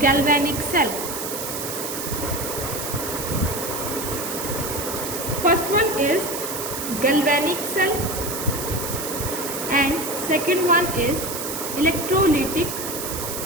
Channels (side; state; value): right; noise; hiss, 5 dB below the sound